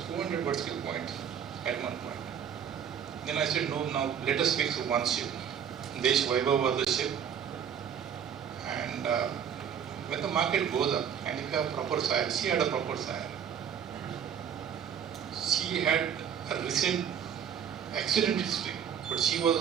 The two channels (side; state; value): left; quieter; 8.3 dB